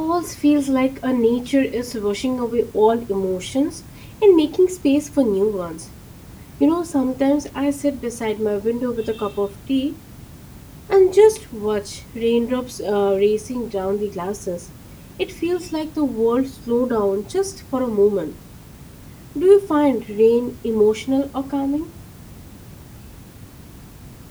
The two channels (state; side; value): identical; both; correlation 1.00